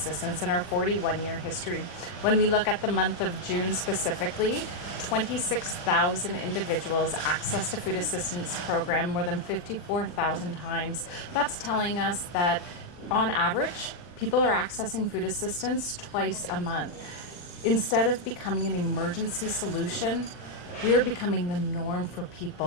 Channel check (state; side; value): late; right; 40 ms